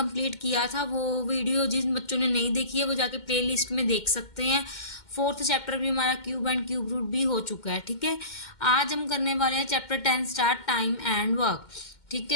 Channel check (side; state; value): right; late; 2.1 ms